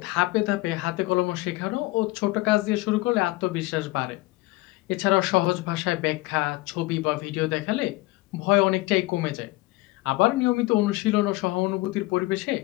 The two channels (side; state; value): right; quieter; 20.7 dB